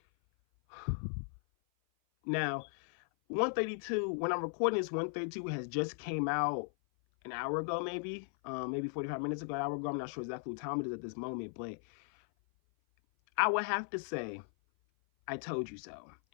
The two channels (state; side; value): silent; right; 53 dB below the other